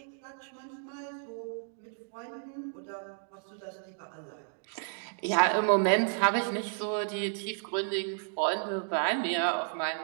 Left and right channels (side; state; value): left; silent; digital silence